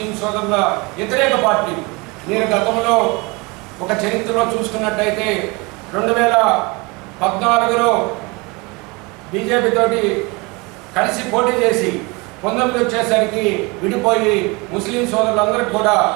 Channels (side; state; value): left; quieter; 26.8 dB